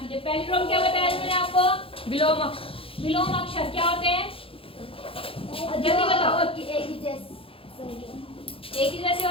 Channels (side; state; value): right; late; 0.27 ms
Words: पैलिड्रोम क्या बताया मैंने आपको? विलोम अक्षर क्या होते हैं? जल्दी बताओ। एक ही जैसे